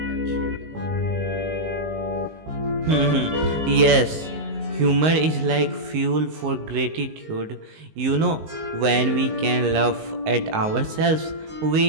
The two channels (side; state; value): left; late; 19 ms